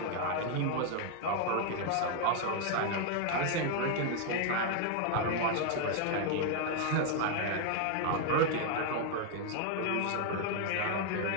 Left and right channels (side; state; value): both; different; correlation 0.00